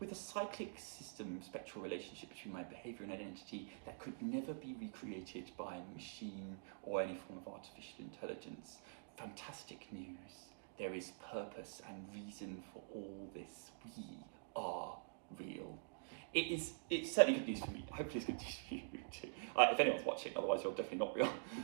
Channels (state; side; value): silent; left; digital silence